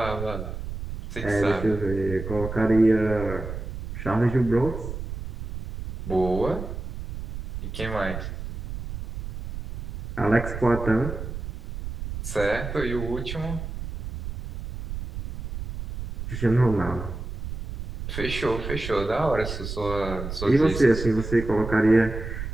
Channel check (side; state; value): right; noise; rumble, 7 dB below the sound